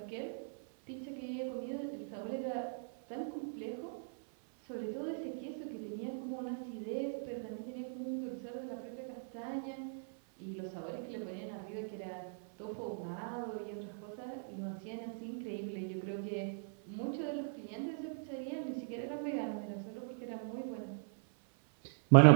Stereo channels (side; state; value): left; silent; 52 dB below the other